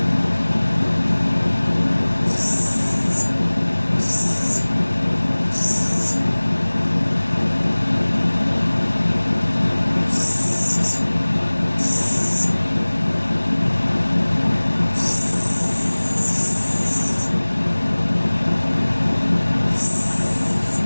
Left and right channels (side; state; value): both; inverted; correlation -1.00